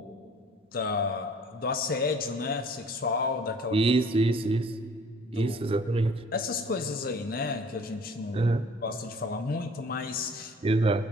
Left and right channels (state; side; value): normal; both; correlation 0.51